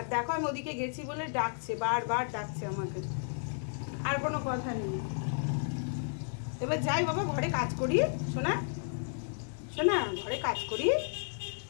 দেখো আমি ওদিকে গেছি বলে ডাকছে, বারবার ডাকছে আমাকে। আর কোনো কথা নেই। এবার যাই বাবা, ঘরে কাজ করি। শোনা শোনা, ঘরে কাজ করি।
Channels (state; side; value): silent; right; digital silence